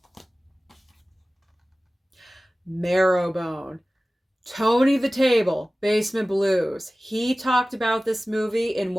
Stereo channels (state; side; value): normal; both; correlation 0.97